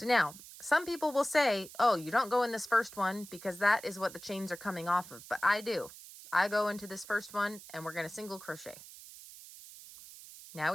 now, some people will say, oh, you don't go in this first one because that is what the chains are coming off of. But I do. I go into this first one and we're going to single crochet. Now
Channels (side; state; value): right; noise; hiss, 16 dB below the sound